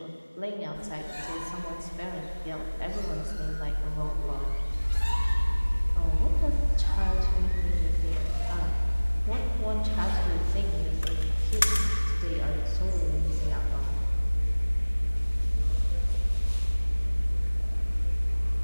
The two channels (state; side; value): inverted; both; correlation -1.00